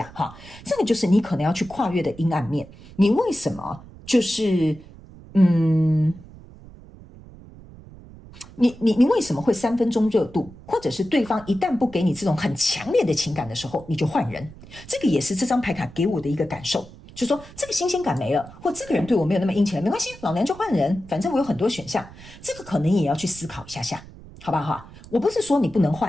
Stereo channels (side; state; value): right; noise; rumble, 19 dB below the sound